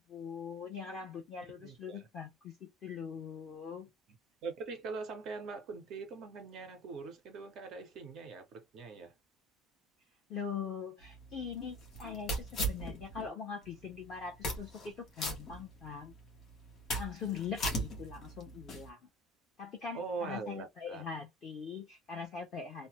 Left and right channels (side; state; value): both; normal; correlation 0.42